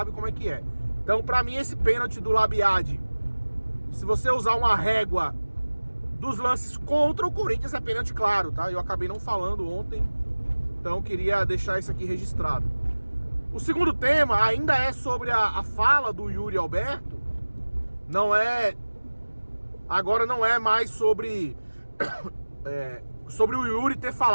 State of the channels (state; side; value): inverted; both; correlation -1.00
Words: como é que é. Então, pra mim, esse pênalti do Labiad, se você usar uma régua dos lances contra o Corinthians, é pênalti claro, tá? Eu acabei não falando ontem, então queria deixar isso aqui registrado. O segundo tema ainda é sobre a fala do Yuri Alberto. Agora não é mais sobre o Yuri ter